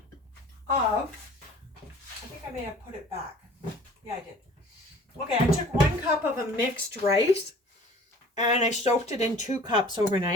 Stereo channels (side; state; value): both; normal; correlation 0.48